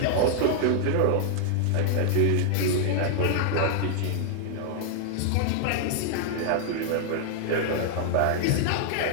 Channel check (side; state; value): both; different; correlation 0.00